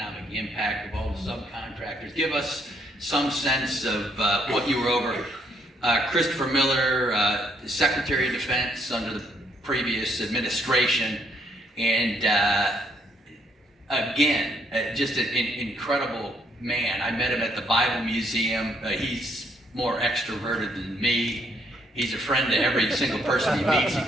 impact of all the subcontractors. Give us some sense of what you were over. Christopher Miller, Secretary of Defense under the previous administration, and again, just an incredible man. I met him at the Bible Museum. He's more extroverted than me. He's a friend to every single person he meets. He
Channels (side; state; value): both; normal; correlation 0.70